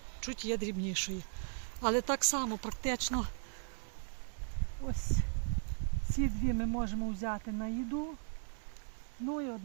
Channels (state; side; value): silent; left; 53 dB below the other